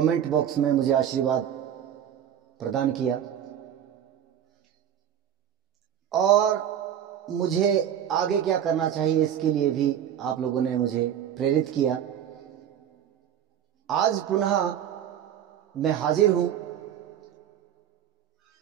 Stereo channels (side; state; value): left; quieter; 9.9 dB